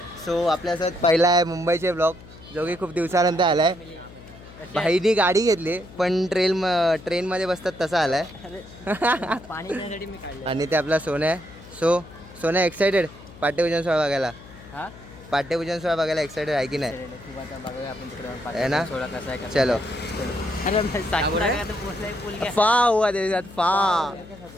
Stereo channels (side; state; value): left; noise; hum, 19 dB below the sound